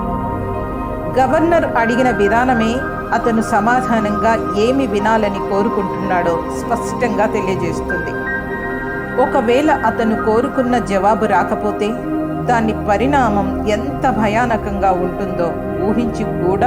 గవర్నర్ అడిగిన విధానమే అతను సమాధానంగా ఏమి వినాలని కోరుకుంటున్నాడో స్పష్టంగా తెలియజేస్తుంది. ఒకవేళ అతను కోరుకున్న జవాబు రాకపోతే దాని పరిణామం ఎంత భయానకంగా ఉంటుందో ఊహించి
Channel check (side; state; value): both; identical; correlation 1.00